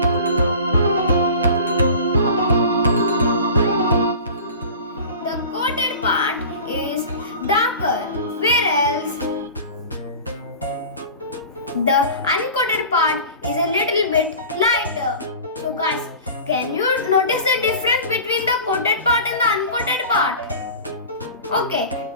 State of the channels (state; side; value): inverted; both; correlation -0.38